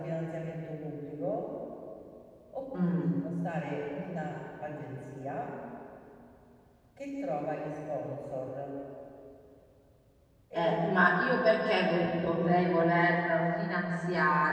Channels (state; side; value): identical; both; correlation 1.00